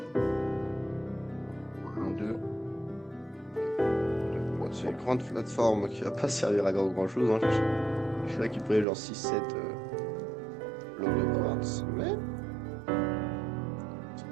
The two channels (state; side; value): drops out; left; at 8.8 s